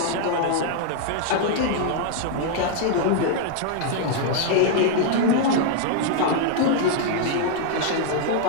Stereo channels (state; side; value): different; both; correlation 0.00